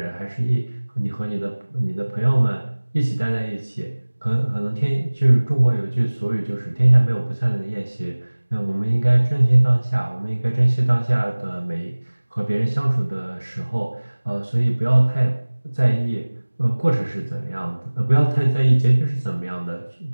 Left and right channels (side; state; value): both; inverted; correlation -1.00